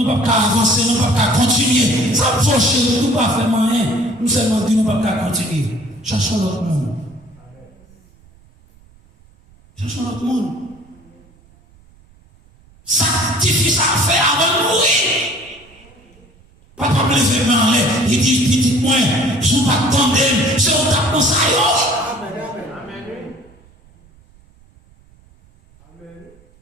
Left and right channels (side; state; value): right; noise; rumble, 29 dB below the sound